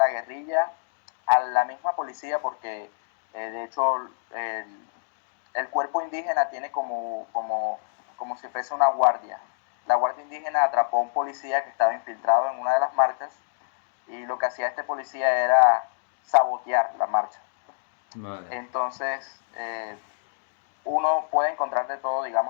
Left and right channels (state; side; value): silent; right; digital silence